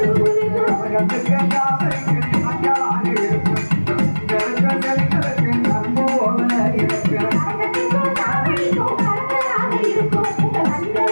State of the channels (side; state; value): both; inverted; correlation -1.00